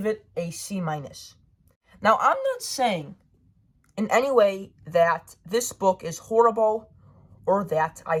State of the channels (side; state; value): both; identical; correlation 1.00